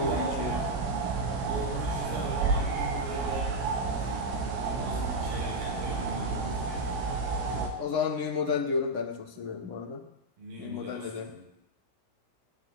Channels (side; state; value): left; late; 17 ms